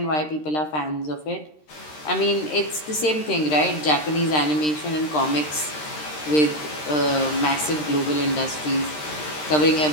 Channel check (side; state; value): right; late; 13 ms